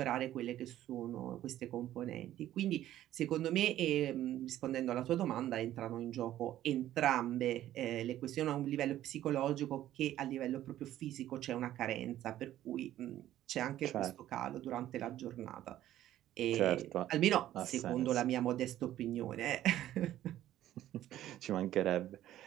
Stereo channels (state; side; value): quieter; left; 13.0 dB